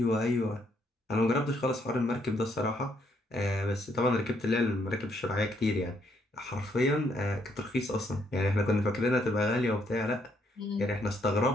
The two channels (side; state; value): both; normal; correlation 0.72